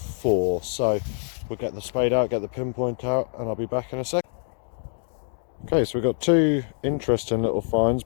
so we'll get the spade out, get the pinpoint out, and I'll be back in a sec. Okay, so we've got two interesting little finds,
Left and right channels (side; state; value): right; silent; digital silence